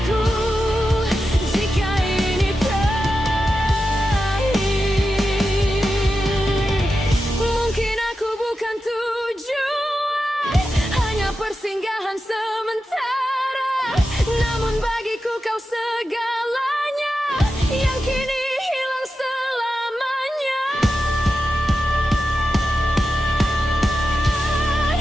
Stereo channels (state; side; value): normal; both; correlation 0.91